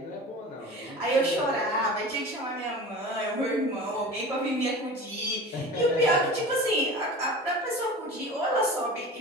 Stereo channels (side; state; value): both; normal; correlation 0.35